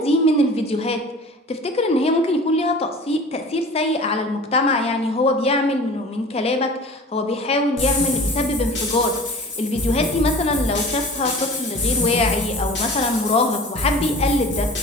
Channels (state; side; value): normal; both; correlation 0.41